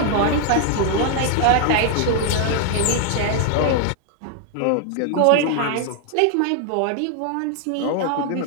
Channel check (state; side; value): different; both; correlation 0.00